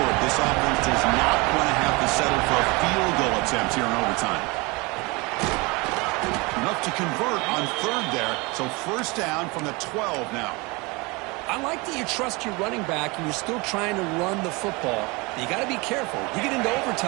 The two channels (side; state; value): left; quieter; 26.1 dB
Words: This offense does not want to have to settle for a field goal attempt here in overtime. Enough to convert on third there. So first down from the 12 now. I like that you trust your running back and you're still trying to run the football. But you got to be careful. You get into